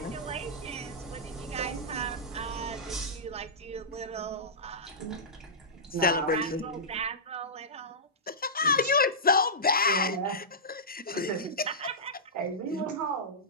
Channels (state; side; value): normal; both; correlation -0.15